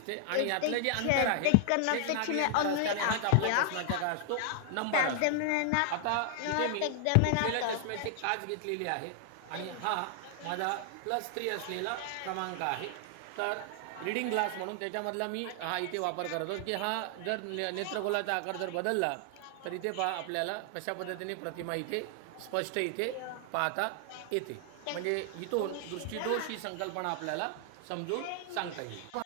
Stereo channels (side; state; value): both; different; correlation 0.00